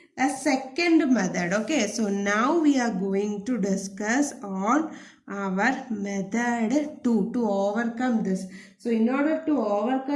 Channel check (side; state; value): both; identical; correlation 1.00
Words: a second method. Okay, so now we are going to discuss on our method 2 to overcome this. So in order to